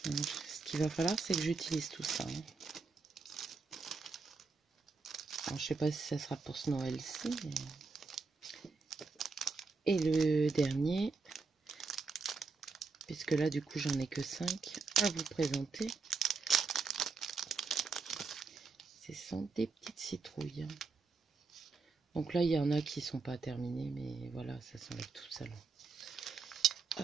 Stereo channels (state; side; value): quieter; left; 4.4 dB